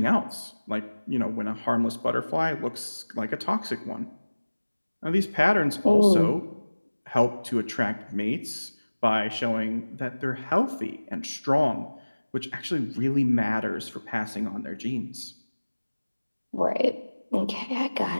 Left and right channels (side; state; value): both; inverted; correlation -1.00